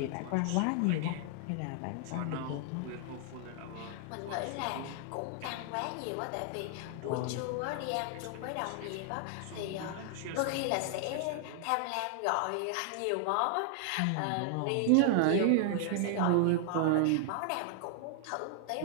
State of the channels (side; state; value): both; different; correlation 0.00